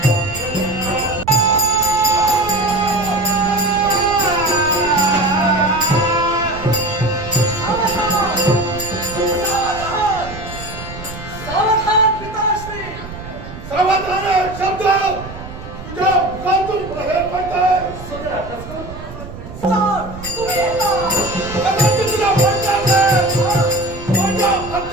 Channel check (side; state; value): right; noise; rumble, 13 dB below the sound